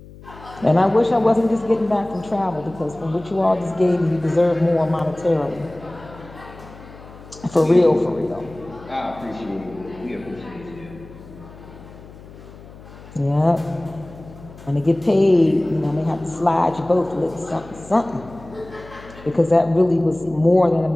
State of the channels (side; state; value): left; noise; hum, 19 dB below the sound